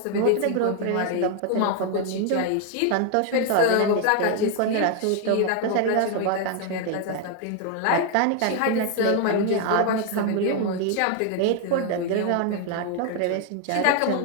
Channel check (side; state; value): both; different; correlation 0.00